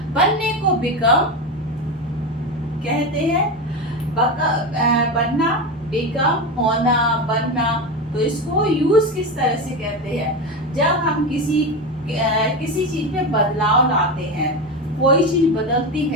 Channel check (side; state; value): both; normal; correlation 0.18